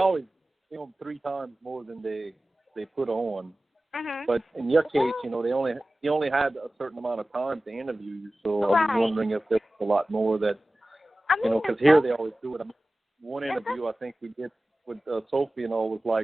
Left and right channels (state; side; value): normal; both; correlation 0.97